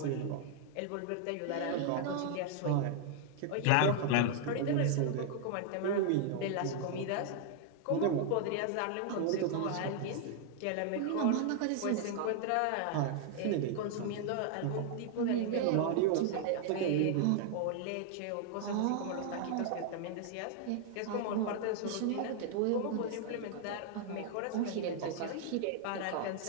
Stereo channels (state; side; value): different; both; correlation 0.00